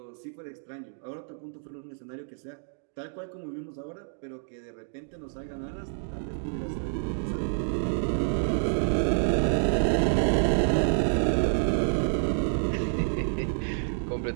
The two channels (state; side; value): silent; left; digital silence